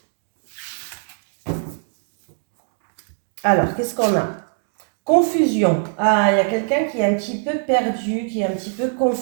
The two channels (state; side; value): silent; left; 64 dB below the other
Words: Alors, qu'est-ce qu'on a? Confusion. Ah, il y a quelqu'un qui est un petit peu perdu, qui est un petit peu